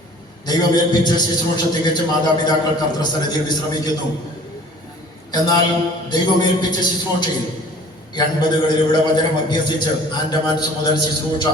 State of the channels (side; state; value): both; normal; correlation 0.49